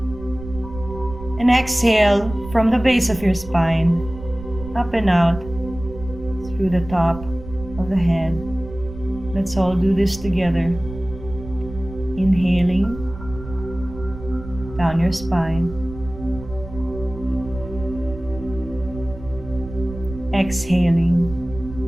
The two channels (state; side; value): noise; right; rumble, 13 dB below the sound